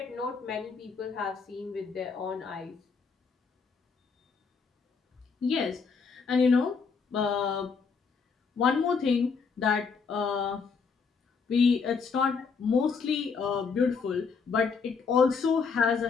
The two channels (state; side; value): quieter; right; 5.4 dB